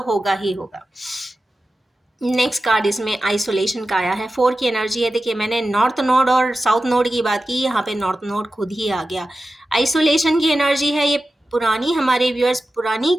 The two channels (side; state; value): both; normal; correlation 0.93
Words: होगा ही होगा। नेक्स्ट कार्ड इसमें आइसोलेशन का आया है, 4 की एनर्जी है। देखिए, मैंने नॉर्थ नोड और साउथ नोड की बात की, यहाँ पे नॉर्थ नोड खुद ही आ गया। आइसोलेशन की एनर्जी है, ये पुरानी, हमारे व्यूअर्स पुरानी